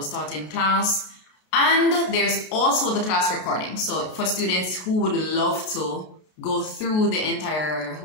taught in class. And there's also the class recording. So for students who would love to go through the entire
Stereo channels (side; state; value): right; late; 33 ms